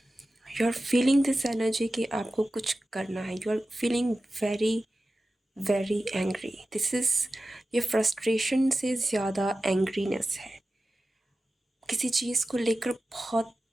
you are feeling this energy कि आपको कुछ करना है, you are feeling very very angry. This is, ये फ्रस्ट्रेशन से ज़्यादा एंग्रीनेस है, किसी चीज़ को लेकर बहुत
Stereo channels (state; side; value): normal; both; correlation 0.94